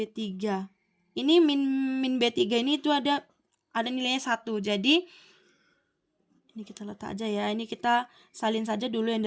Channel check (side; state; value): both; identical; correlation 1.00